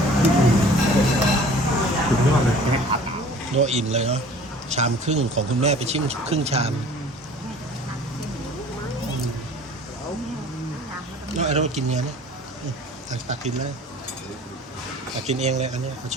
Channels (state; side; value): normal; both; correlation 0.48